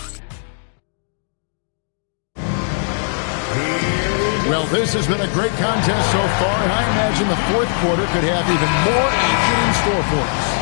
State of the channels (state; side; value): silent; right; digital silence